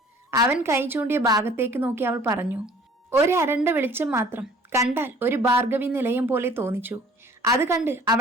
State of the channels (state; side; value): normal; both; correlation 0.52